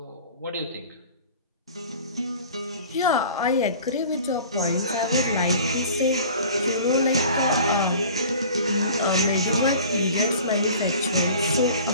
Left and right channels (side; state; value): both; inverted; correlation -0.44